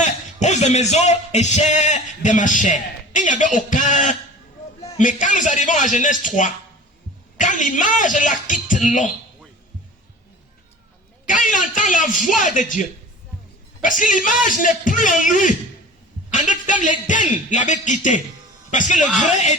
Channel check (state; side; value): normal; both; correlation 0.40